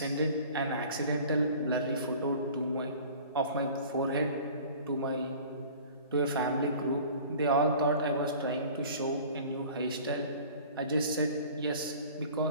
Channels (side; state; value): both; inverted; correlation -0.45